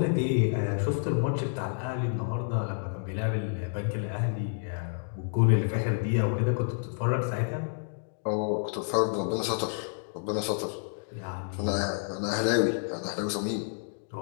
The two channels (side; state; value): right; silent; digital silence